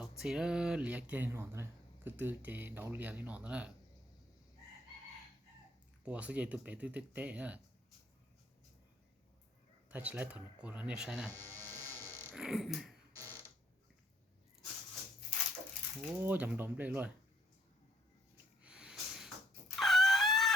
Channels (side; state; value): both; normal; correlation 0.65